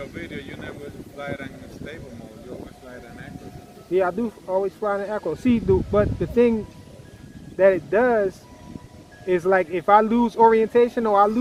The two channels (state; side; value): identical; both; correlation 1.00